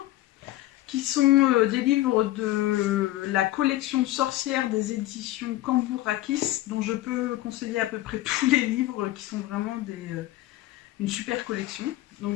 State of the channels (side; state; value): right; quieter; 16.1 dB